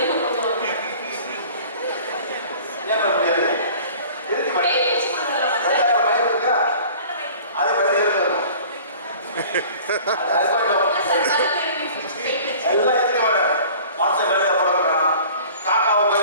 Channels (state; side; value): inverted; both; correlation -0.46